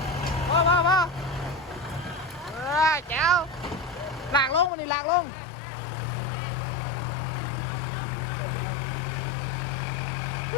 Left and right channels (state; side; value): drops out; right; at 4.7 s